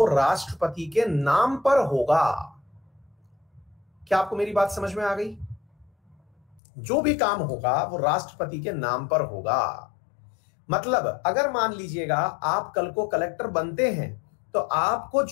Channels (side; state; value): right; drops out; at 6.6 s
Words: राष्ट्रपति के नाम पर होगा। क्या आपको मेरी बात समझ में आ गई? जो भी काम होगा वो राष्ट्रपति के नाम पर होगा। मतलब अगर मान लीजिएगा आप कल को कलेक्टर बनते हैं तो आपको